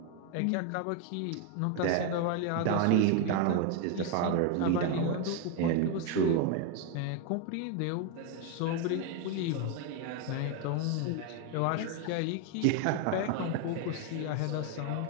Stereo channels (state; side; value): different; both; correlation 0.01